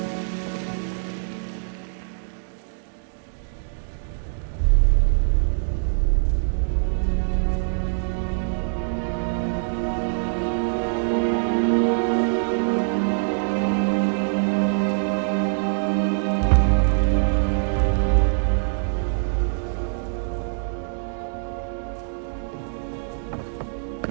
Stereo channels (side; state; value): left; silent; digital silence